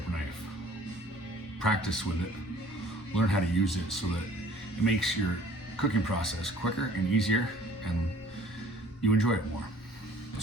knife. Practice with it. Learn how to use it so that it makes your cooking process quicker and easier, and you enjoy it more.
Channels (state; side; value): normal; both; correlation 0.53